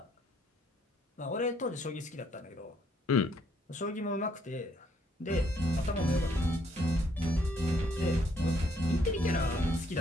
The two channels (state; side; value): normal; both; correlation 0.68